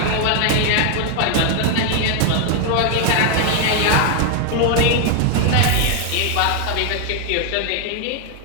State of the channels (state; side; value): different; both; correlation 0.00